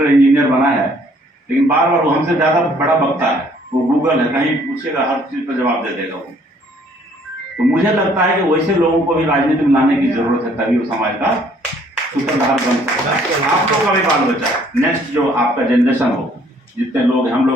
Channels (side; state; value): both; normal; correlation 0.61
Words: इंजीनियर बना है, लेकिन बार बार वो हमसे ज्यादा बड़ा बकता है। वो गूगल है, कहीं पूछेगा हर चीज पर जवाब दे देगा वो। तो मुझे लगता है कि वैसे लोगों को भी राजनीति में लाने की जरूरत है, तभी वो समाज का सूत्रधार बन सकता है। आप लोग का भी बाल बच्चा, नेक्स्ट जो आपका जनरेशन हो, जितने लोग, हम